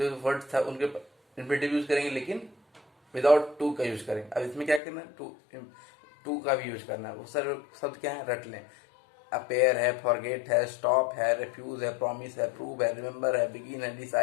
वर्ड था उनके इन्फिनेटिव यूज करेंगे लेकिन विदाउट टू का यूज करेंगे। अब इसमें क्या करना है, टू का भी यूज करना है। वो सारे शब्द क्या है, रट लें। अपेयर है, फॉरगेट है, स्टॉप है, रिफ्यूज है, प्रॉमिस है, प्रूव है, रिमेंबर है, बिगिन है,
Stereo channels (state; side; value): drops out; right; at 4.8 s